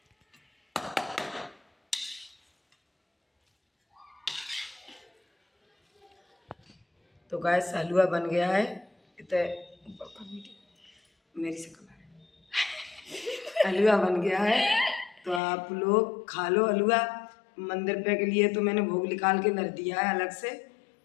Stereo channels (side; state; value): right; drops out; at 15.4 s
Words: तो गैस हलवा बन गया है, मेरी से हलवा बन गया है। तो आप लोग खा लो हलवा। मंदिर पे के लिए तो मैंने भोग निकाल के धर दिया है अलग से,